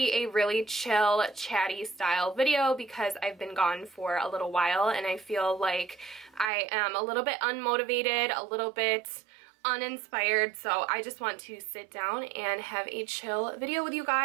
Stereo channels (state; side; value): drops out; left; at 6.5 s